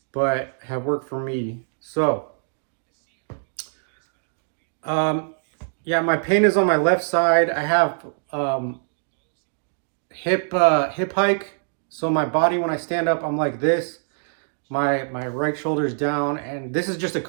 but have worked for me. So, yeah, my pain is on my left side. I have hip hike. So my body, when I stand up, I'm like this. My right shoulder is down, and this is just a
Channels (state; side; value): silent; left; digital silence